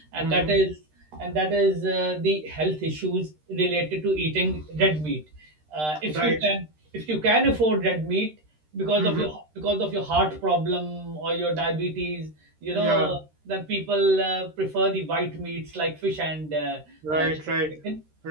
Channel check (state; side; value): late; left; 13 ms